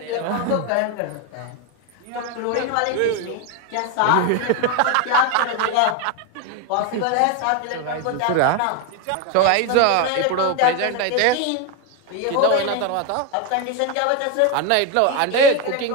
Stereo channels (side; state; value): both; different; correlation 0.02